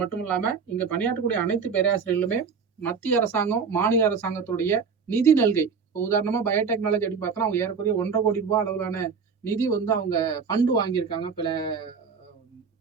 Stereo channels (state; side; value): quieter; left; 5.8 dB